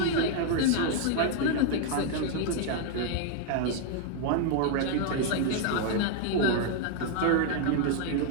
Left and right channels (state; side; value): different; both; correlation 0.00